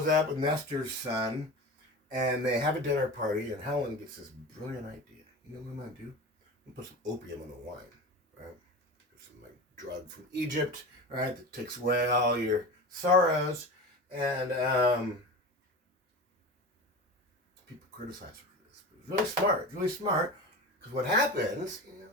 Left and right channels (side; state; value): both; normal; correlation 0.30